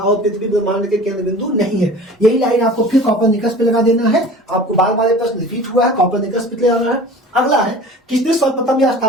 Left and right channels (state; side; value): normal; both; correlation 0.41